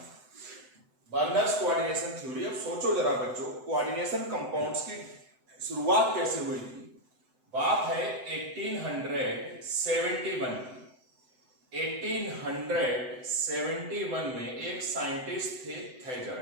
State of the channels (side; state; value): left; late; 7.9 ms